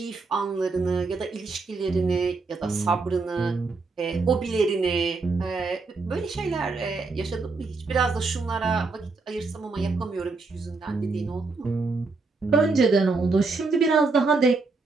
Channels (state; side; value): quieter; left; 4.0 dB